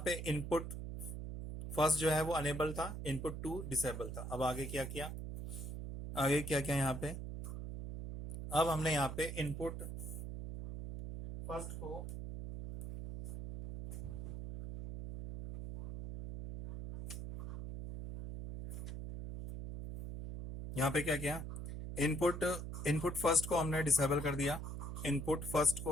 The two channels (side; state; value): right; noise; hum, 6 dB below the sound